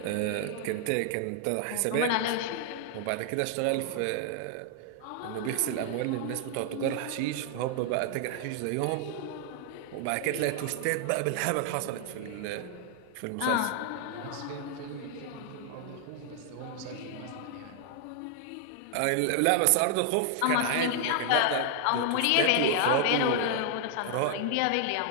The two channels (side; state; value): both; different; correlation 0.00